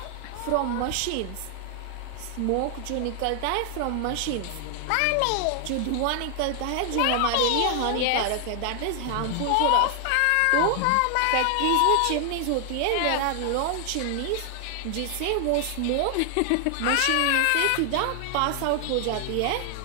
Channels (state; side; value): different; both; correlation 0.00